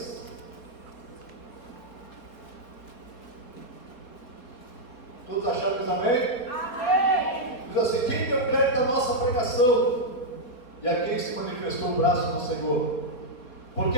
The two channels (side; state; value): right; late; 4.2 ms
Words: Todos acharam isso? Amém? Amém. Diz assim: quem deu crédito à nossa pregação? E a quem se manifestou o braço do Senhor?